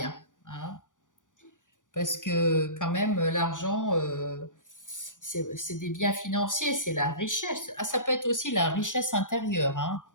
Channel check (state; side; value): late; right; 0.87 ms